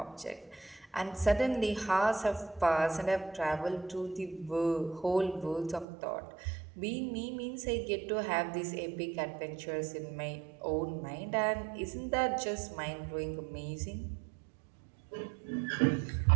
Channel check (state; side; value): drops out; left; at 5.9 s